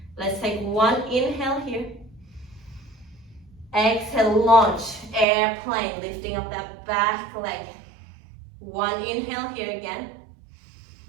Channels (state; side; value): drops out; left; at 5.2 s